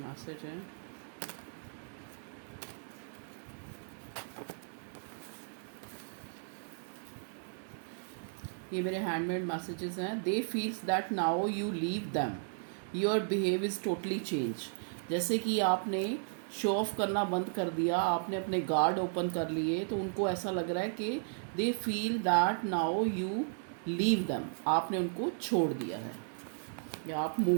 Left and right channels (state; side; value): silent; left; 54 dB below the other